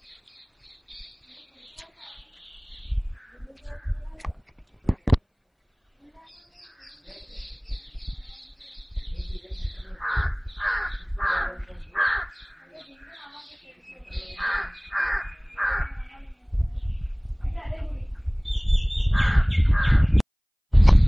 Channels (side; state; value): both; identical; correlation 1.00